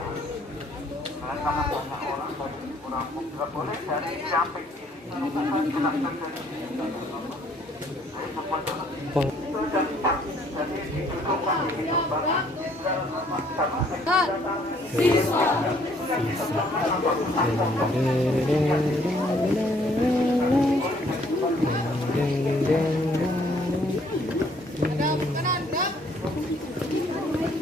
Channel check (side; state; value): both; normal; correlation 0.63